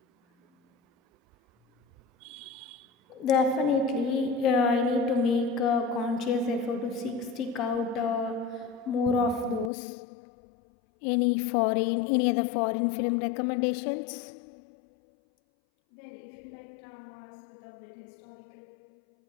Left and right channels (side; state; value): right; drops out; at 9.7 s